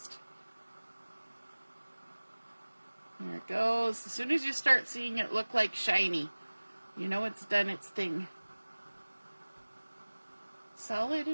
There it goes. As soon as you start seeing it look like shiny, you know it's done its thing. Solid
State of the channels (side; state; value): both; inverted; correlation -1.00